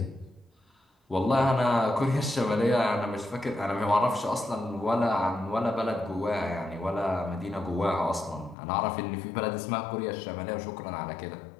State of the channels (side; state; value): right; drops out; at 8.6 s